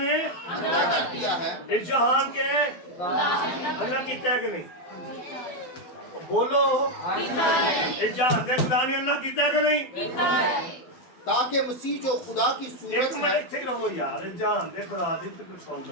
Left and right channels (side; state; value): right; late; 12 ms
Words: अंधा कर दिया है। इस जहान के अल्लाह कीता है कि नहीं? बोलो, इस जहान के खुदा ने अल्लाह कीता है कि नहीं? تاکہ مسیح جو خدا کی ایک صورت منٹ ہے ਇੱਥੇ ਰਹੋ ਯਾਰ ਜਹਾਨ ਦੇ ਖੁਦਾ ਦੀ ਤੇ ਕੁਝ ਸੁਣ